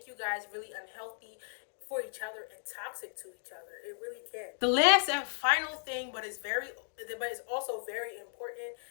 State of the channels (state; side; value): silent; right; digital silence